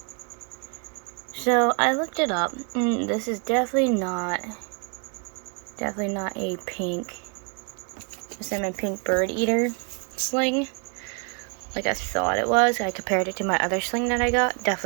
So, I looked it up, and this is definitely not a salmon pink bird eater sling like I thought it was. I compared it to my other sling that I got.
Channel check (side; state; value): left; quieter; 37.4 dB